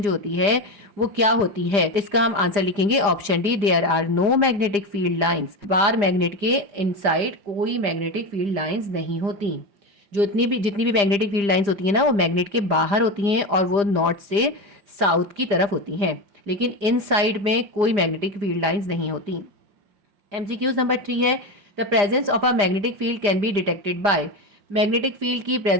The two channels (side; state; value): left; late; 4.9 ms